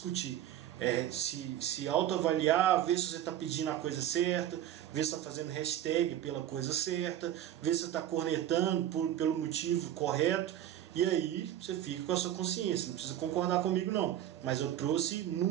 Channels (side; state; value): left; quieter; 11.7 dB